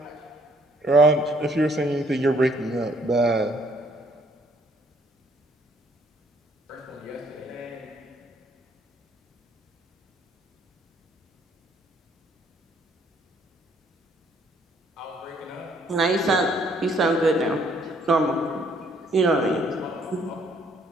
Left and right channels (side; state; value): both; normal; correlation 0.65